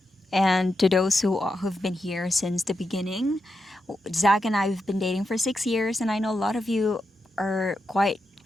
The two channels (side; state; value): both; normal; correlation 0.87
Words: and to those who've been here since the beginning, Zach and I have been dating for 6 years, and I know a lot of you are quite